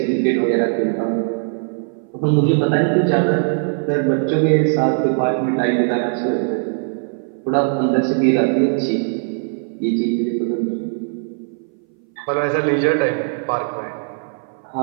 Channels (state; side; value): silent; left; 61 dB below the other